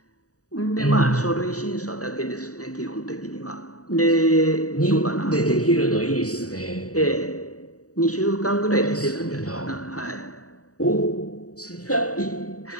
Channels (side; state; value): right; late; 0.66 ms